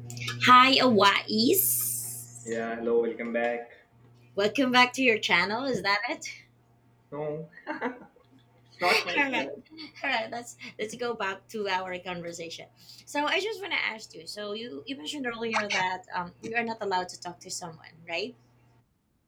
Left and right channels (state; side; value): identical; both; correlation 1.00